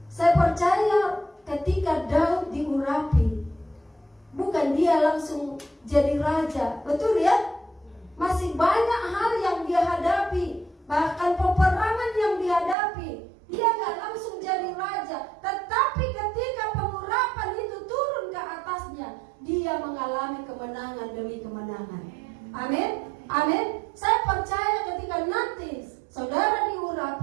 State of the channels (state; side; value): drops out; left; at 12.8 s